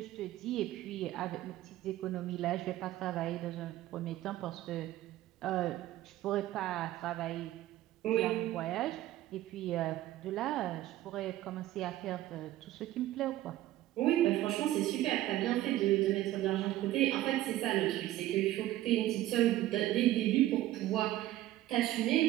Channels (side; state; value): left; quieter; 14.8 dB